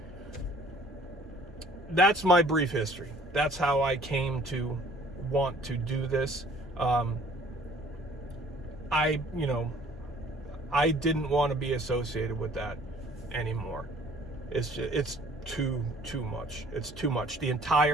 that's my brief history. That's how I came to want to do this. I didn't want to be associated with that anymore. It's too much. It's too much. The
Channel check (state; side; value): normal; both; correlation 0.55